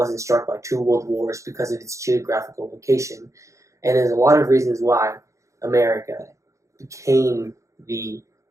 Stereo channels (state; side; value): late; left; 0.15 ms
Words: struck by two world wars because of its geographical location. And there's a lot of reasons why America became the